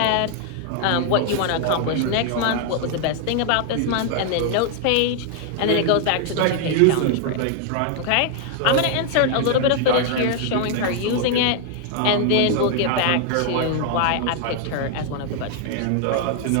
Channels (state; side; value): different; both; correlation 0.00